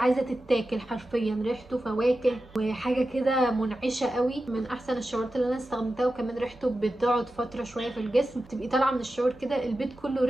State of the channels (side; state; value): both; normal; correlation 0.92